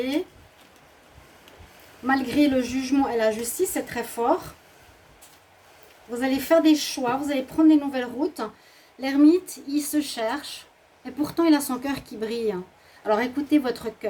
Malgré le jugement et la justice, c'est très fort. Vous allez faire des choix, vous allez prendre des nouvelles routes. L'ermite, il se cherche, et pourtant il a son cœur qui brille. Alors écoutez votre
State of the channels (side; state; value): both; identical; correlation 1.00